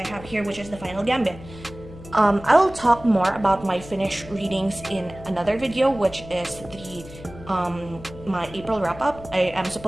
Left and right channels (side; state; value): left; noise; hum, 16 dB below the sound